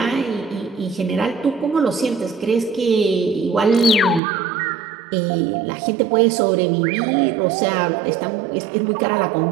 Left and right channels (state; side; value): drops out; left; at 4.2 s